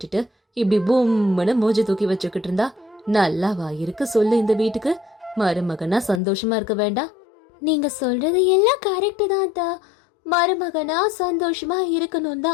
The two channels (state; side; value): drops out; right; at 6.2 s